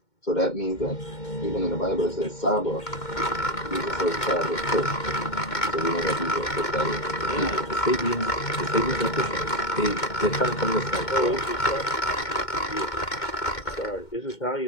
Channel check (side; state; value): right; late; 2.2 ms